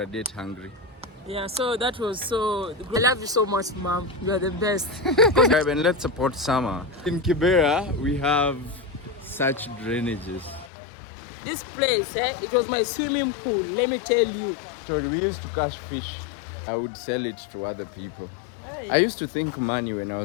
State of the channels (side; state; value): right; drops out; at 10.7 s